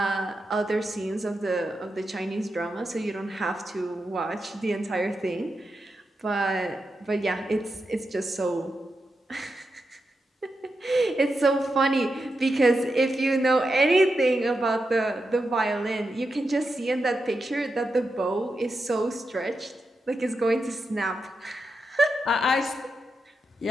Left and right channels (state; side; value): normal; both; correlation 0.88